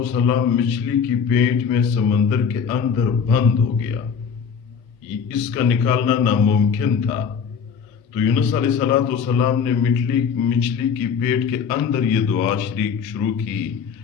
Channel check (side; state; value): right; quieter; 6.6 dB